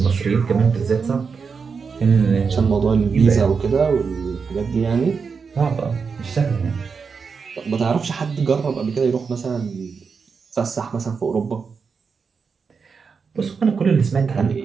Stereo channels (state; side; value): quieter; left; 5.5 dB